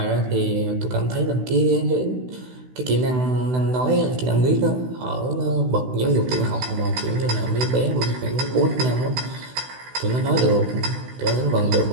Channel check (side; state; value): left; late; 16 ms